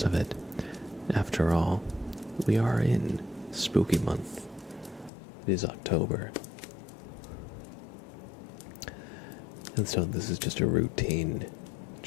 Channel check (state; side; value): drops out; right; at 5.1 s